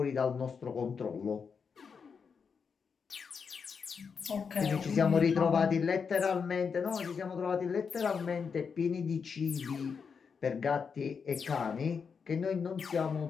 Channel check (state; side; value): quieter; right; 6.0 dB